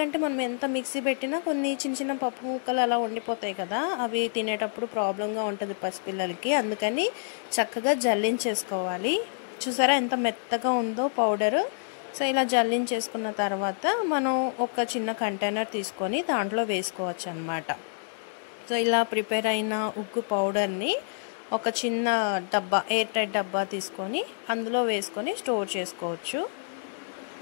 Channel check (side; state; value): right; silent; digital silence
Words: మనం ఎంత మిక్సీ పెట్టినా కొన్ని చిన్న చిన్న పప్పు ముక్కలు అలా ఉండిపోతాయి కదా, అవి తినేటప్పుడు ప్రాబ్లంగా ఉంటుంది పసిపిల్లలకి. అందుకని చక్కగా జల్లించేసుకోవాలి. చూసారా ఎంత మెత్తగా ఉందో పౌడర్. సో ఇలా జల్లించేసుకున్న తర్వాత మనం ఒక చిన్న కంటైనర్ తీసుకొని దాంట్లో వేసుకోవచ్చు అన్నమాట. సో ఇలా ప్రిపేర్ అయిన ఉగ్గు పౌడర్ని ఒక చిన్న డబ్బా, ఎయిర్ టైట్ డబ్బా తీసుకొని అందులో వేసుకొని స్టోర్ చేసుకోవచ్చు.